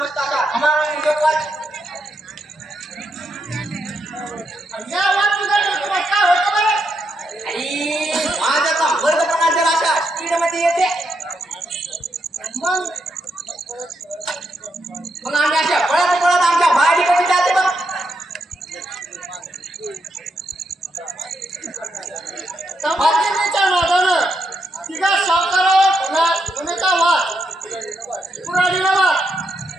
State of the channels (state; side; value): normal; both; correlation 0.81